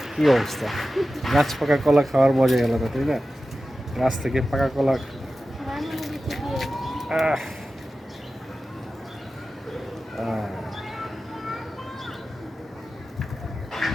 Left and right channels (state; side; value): normal; both; correlation 0.94